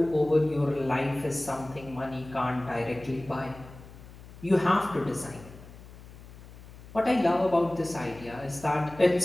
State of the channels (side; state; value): left; noise; hum, 18 dB below the sound